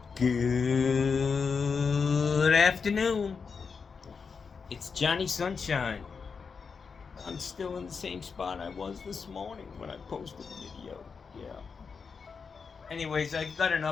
Good afternoon. It's Johnny Sunshine. I'm still in the same spot I was this morning when I posted the video. Yeah. Anyways, I got an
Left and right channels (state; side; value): quieter; right; 5.5 dB